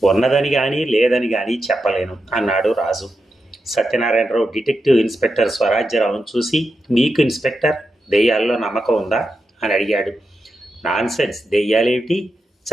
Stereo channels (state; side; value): normal; both; correlation 0.87